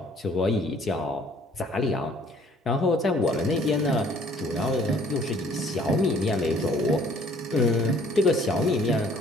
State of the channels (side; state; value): both; normal; correlation 0.58